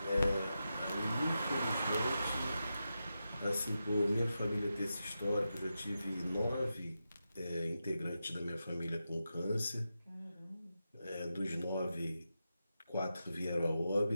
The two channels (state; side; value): inverted; both; correlation -0.89